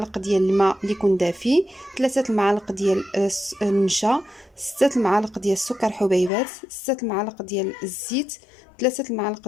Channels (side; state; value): right; drops out; at 6.3 s